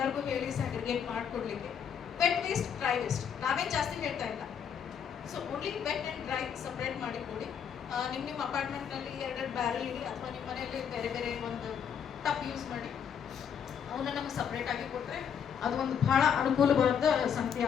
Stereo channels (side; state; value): right; quieter; 7.8 dB